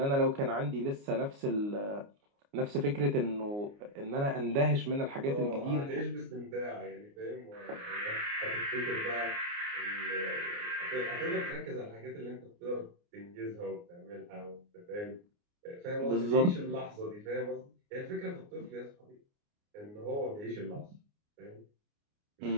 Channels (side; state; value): left; late; 29 ms